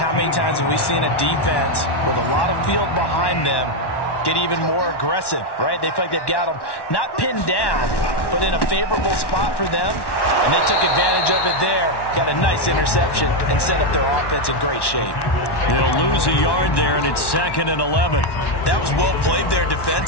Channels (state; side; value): late; right; 1.1 ms